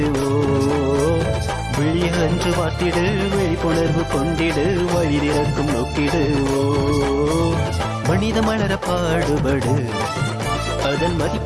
விழிய அன்று பார்த்திடு, விழிப்புணர்வு கொண்டிடு, வழி திறக்கும் நோக்கிடு. மனித மலர பாடுபடு, அதன்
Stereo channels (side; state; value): both; identical; correlation 1.00